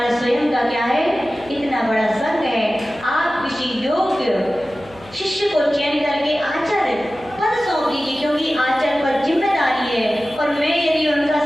स्वयं का क्या है? इतना बड़ा संघ है, आप किसी योग्य शिष्य को चयन करके आचार्य पद सौंप दीजिए, क्योंकि आचार्य पर जिम्मेदारी है, और मैं यदि उनका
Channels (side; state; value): left; noise; hum, 24 dB below the sound